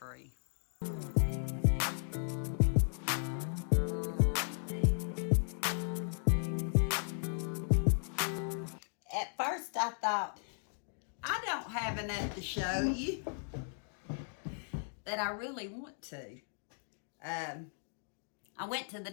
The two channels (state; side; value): silent; right; digital silence